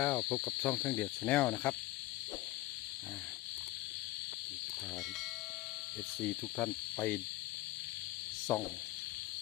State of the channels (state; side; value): quieter; right; 17.6 dB